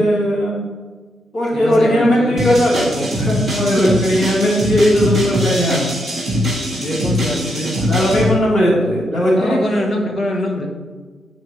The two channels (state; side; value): normal; both; correlation 0.80